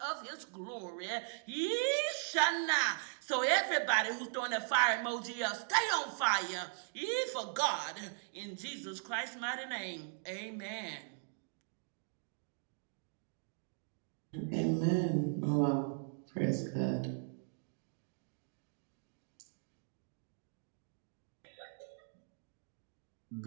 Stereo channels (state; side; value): silent; left; digital silence